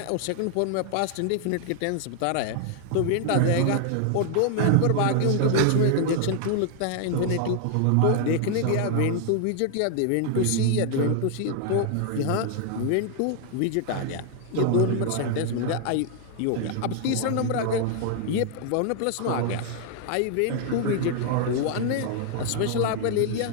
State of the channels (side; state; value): both; different; correlation 0.00